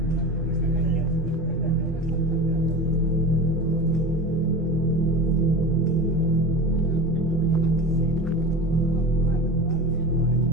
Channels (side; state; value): both; normal; correlation 0.31